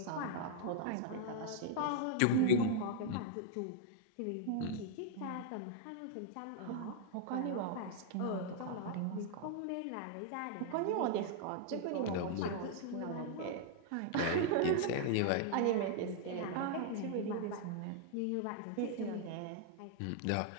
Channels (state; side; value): different; both; correlation -0.01